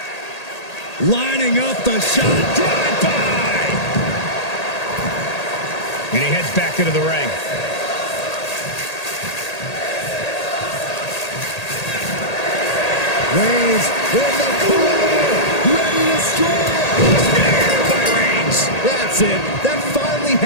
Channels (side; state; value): right; late; 1.8 ms